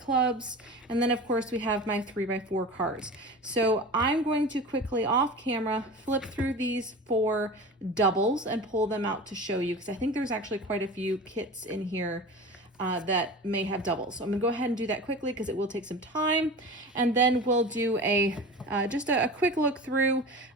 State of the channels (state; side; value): normal; both; correlation 0.33